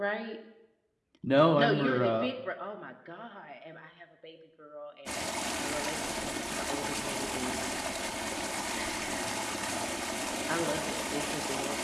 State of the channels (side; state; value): both; identical; correlation 1.00